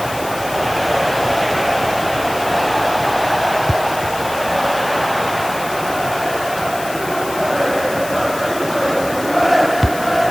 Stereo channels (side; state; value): left; noise; hiss, 13 dB below the sound